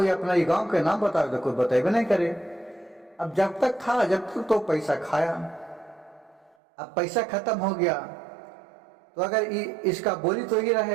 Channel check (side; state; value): left; drops out; at 6.6 s